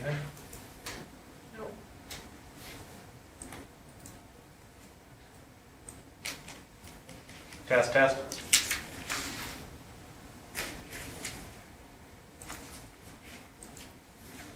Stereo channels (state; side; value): identical; both; correlation 1.00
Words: No. Test, test.